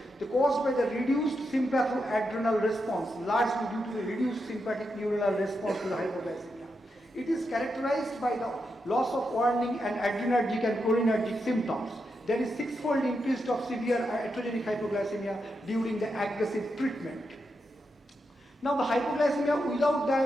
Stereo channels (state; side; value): normal; both; correlation 0.85